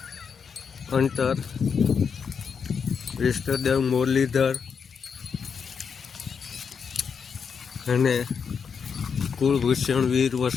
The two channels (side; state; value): right; quieter; 6.3 dB